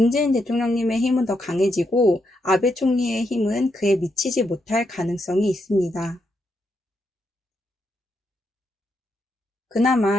대통령님의 힘은 더 강해지고 아베 총리의 힘은 그에 미치지 못할 가능성이 있습니다.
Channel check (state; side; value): normal; both; correlation 0.81